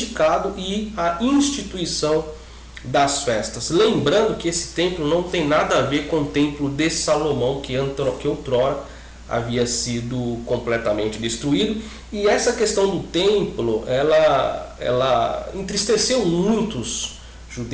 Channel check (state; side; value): identical; both; correlation 1.00